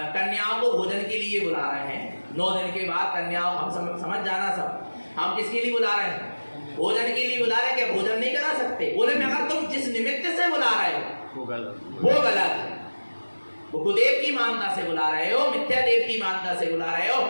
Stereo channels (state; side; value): inverted; both; correlation -1.00